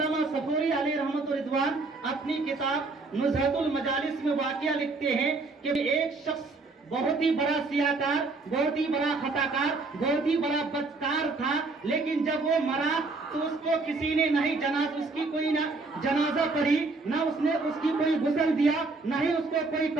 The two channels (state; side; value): quieter; left; 3.7 dB